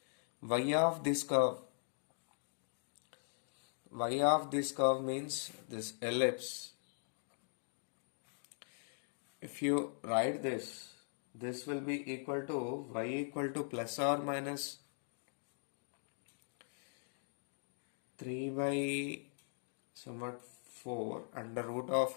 y of this curve. Y of this curve means this ellipse. If you write this, this will be equal to y equal to plus or minus 3 by somewhat 4 under root of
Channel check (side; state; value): right; silent; digital silence